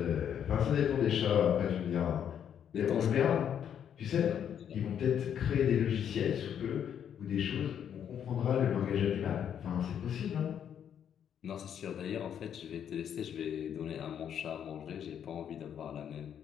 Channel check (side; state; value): right; quieter; 8.9 dB